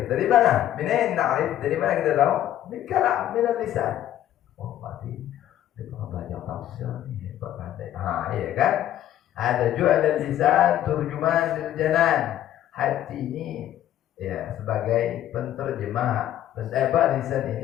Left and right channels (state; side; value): quieter; right; 12.1 dB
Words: Dari mana? Minain na'rif. Dari mana kita tahu? Min kalam, min lisan. Oh berarti dia pernah belajar tafsir nih, pandai. Iya kan? Ada juga ada lisan turjuman lil janan. Hati ini ya sebagai penterjemah. Lisan